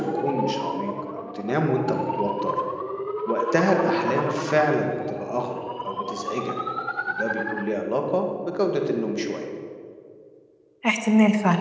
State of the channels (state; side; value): identical; both; correlation 1.00